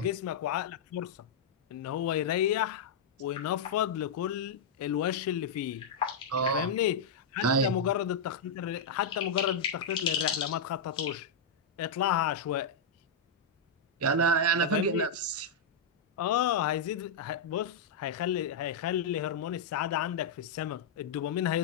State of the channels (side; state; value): right; quieter; 4.3 dB